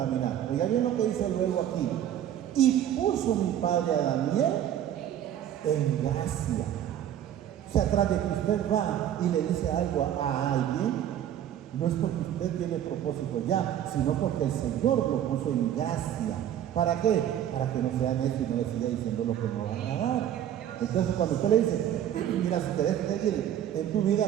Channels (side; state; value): left; quieter; 10.7 dB